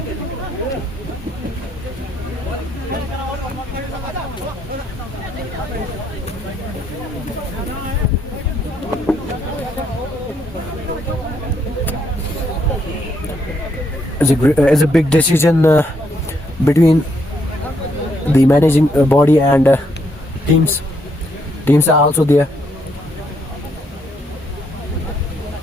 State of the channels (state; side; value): normal; both; correlation 0.74